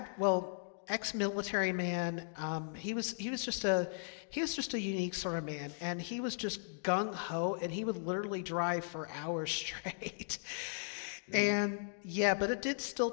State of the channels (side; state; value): right; silent; digital silence